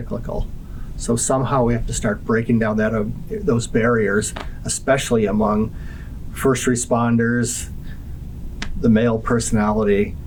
So somehow we have to start breaking down those barriers, especially among first responders, the male personality,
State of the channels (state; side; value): identical; both; correlation 1.00